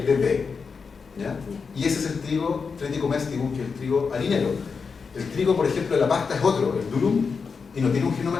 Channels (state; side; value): quieter; right; 5.3 dB